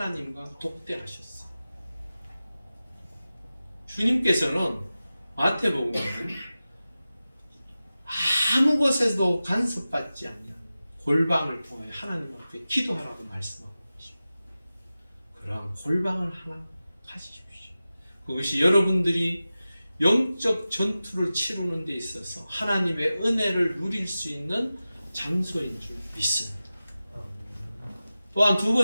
독대하셨어요. 주님께서는 마태복음에는 아무 것에도 간섭받지 않는 골방을 통하여 하나님 앞에 기도하라고 말씀하고 계십니다. 그러한 골방을 하나 가지십시오. 그것이 여러분들이 영적 전투를 치르는 데 있어서 하나님의 은혜를 누릴 수 있는 장소인 줄 믿습니다. 또한 두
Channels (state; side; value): inverted; both; correlation -0.95